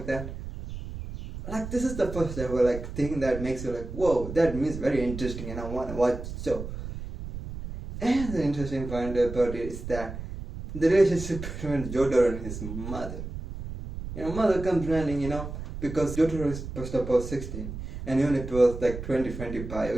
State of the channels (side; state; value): right; noise; rumble, 9 dB below the sound